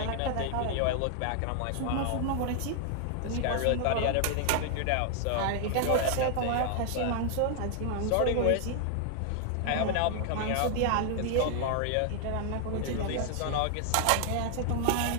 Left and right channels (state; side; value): different; both; correlation 0.00